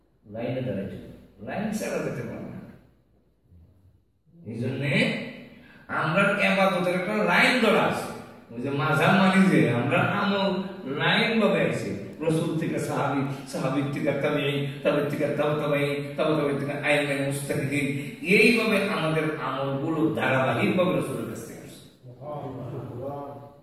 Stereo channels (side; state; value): both; identical; correlation 1.00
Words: লাইনে দাঁড়াইতে, লাইন ছাড়া যেতে পারে না। এই জন্যে আমরা ইবাদতের একটা লাইন ধরা আছে। ওই যে মাঝাব মানি যে আমরা আমল লাইন ভাবে আছি, রাসূল থেকে সাহাবী, সাহাবী থেকে তাবেঈ, তাবেঈ থেকে তাবেঈ, তাবেঈ থেকে আইমে মুস্তাহিদিন, এইভাবে আমাদের আমলগুলো ধারাবাহিকভাবে রাসূলের কাছ থেকে আসছে।